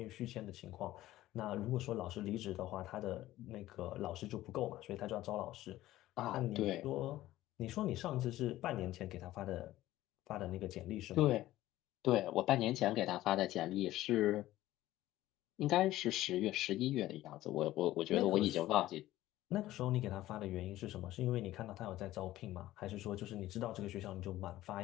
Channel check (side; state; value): right; quieter; 15.4 dB